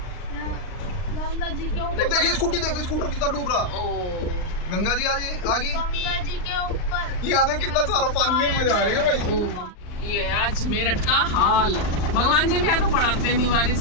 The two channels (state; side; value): late; right; 39 ms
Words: गंगा जी के ऊपर। देखिए स्कूटी, देखो स्कूटर कितना डूब रहा। ओ गंगा जी आगे गंगा जी के ऊपर यहाँ देख कितना सारा पानी है, मजा आ रही है भाई। ये आज मेरठ का हाल। भगवान जी भी आके पढ़ाते नहीं